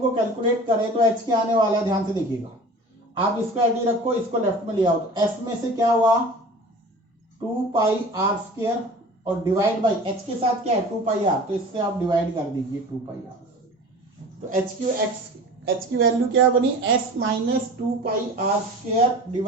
कैलकुलेट करें तो h क्या आने वाला है, ध्यान से देखिएगा, आप इसको ऐड रखो, इसको लेफ्ट में ले आओ, तो s में से क्या हुआ 2 पाई आर स्क्वायर, और डिवाइड बाई h के साथ क्या है 2 पाई आर, तो इससे आप डिवाइड कर दीजिए 2 पाई आर, तो h की वैल्यू क्या बनी, s minus 2 pi are square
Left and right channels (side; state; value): both; normal; correlation 0.40